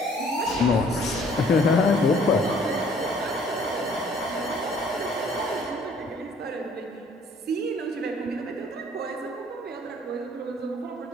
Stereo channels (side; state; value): both; normal; correlation 0.57